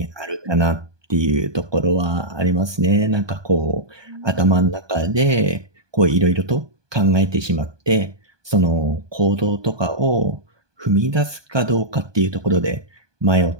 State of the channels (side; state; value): left; late; 1.2 ms